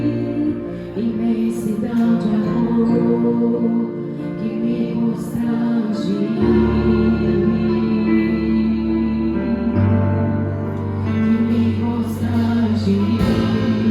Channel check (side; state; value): both; identical; correlation 1.00